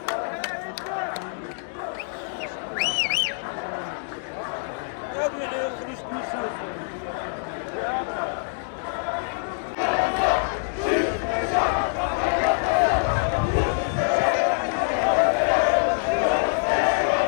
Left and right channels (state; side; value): silent; right; digital silence